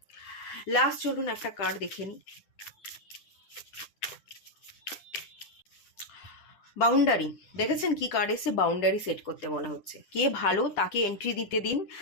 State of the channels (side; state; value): right; late; 10 ms